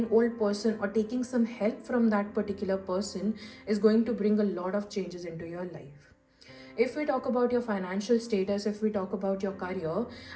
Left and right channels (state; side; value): identical; both; correlation 1.00